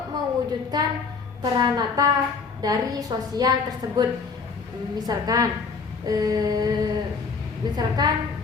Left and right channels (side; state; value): right; quieter; 4.9 dB